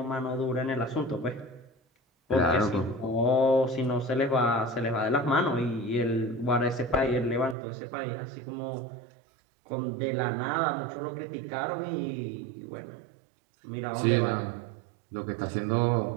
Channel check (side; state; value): left; drops out; at 7.6 s